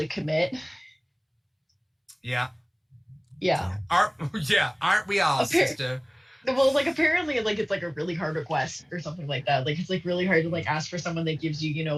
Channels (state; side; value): identical; both; correlation 1.00